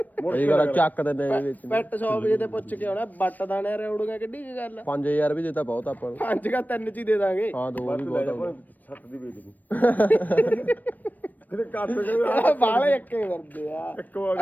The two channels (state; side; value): late; right; 0.085 ms